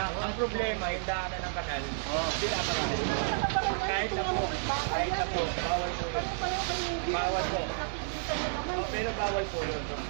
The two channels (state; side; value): silent; left; digital silence